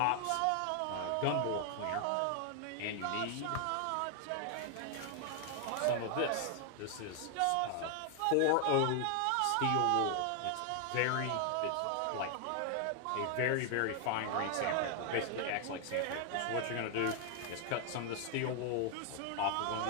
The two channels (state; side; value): different; both; correlation 0.00